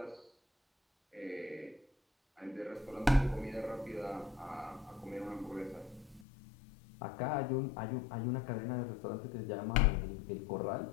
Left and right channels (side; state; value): right; drops out; at 6.2 s